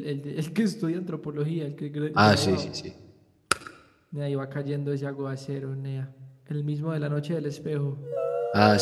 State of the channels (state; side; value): identical; both; correlation 1.00